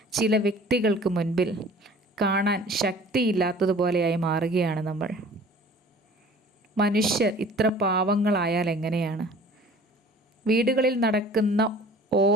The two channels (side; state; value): both; normal; correlation 0.47